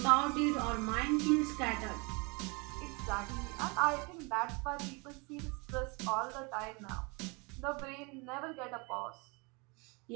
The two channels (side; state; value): left; quieter; 29.7 dB